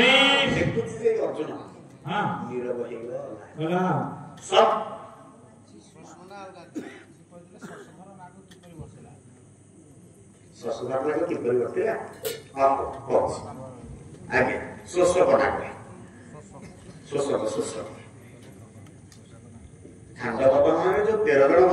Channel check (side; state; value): both; identical; correlation 1.00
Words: देखुछि जे अर्जुन हां नीरव हेगला सब ससुराल लागो कि परिवर्तन हां कोच आगे सोसो बना के सोसो खंड बाबा माने जो 13 जण